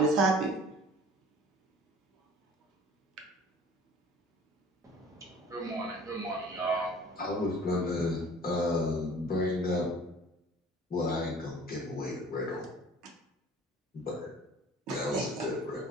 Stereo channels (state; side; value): normal; both; correlation 0.48